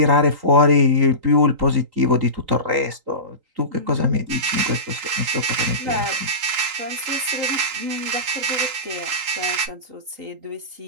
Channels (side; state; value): left; late; 3.8 ms